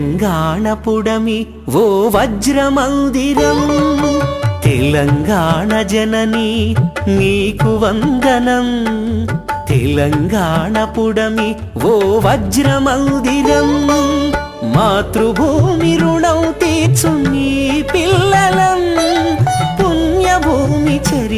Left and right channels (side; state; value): both; identical; correlation 1.00